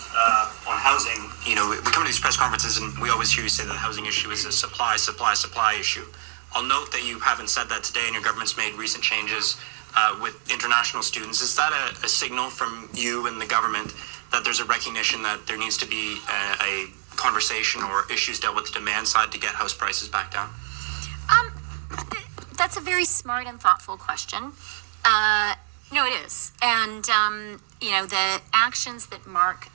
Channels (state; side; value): silent; left; 62 dB below the other